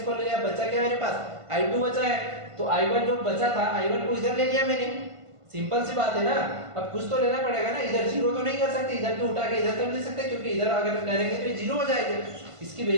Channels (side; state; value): left; late; 1.5 ms